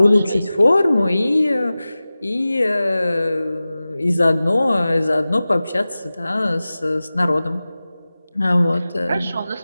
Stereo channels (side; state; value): both; inverted; correlation -0.97